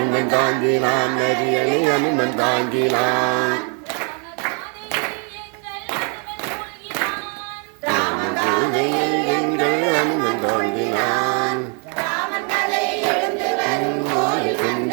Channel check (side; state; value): left; quieter; 38.5 dB